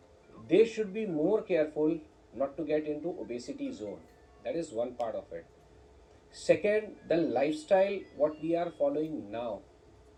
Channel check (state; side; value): identical; both; correlation 1.00